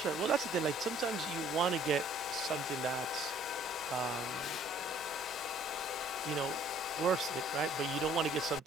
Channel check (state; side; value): normal; both; correlation 0.58